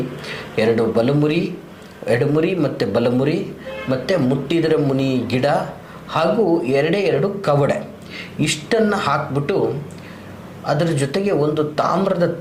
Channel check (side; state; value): both; identical; correlation 1.00